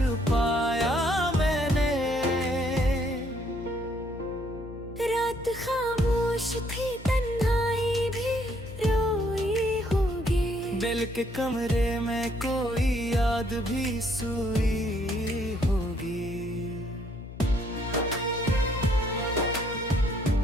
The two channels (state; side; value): noise; left; hum, 13 dB below the sound